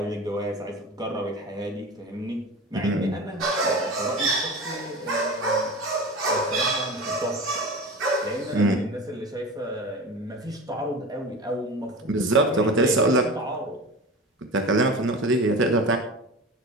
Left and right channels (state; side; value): normal; both; correlation 0.32